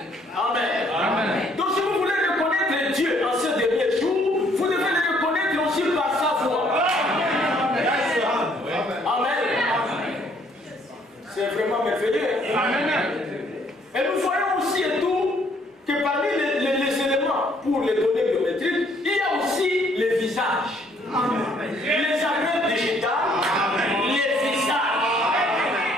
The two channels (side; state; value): both; normal; correlation 0.65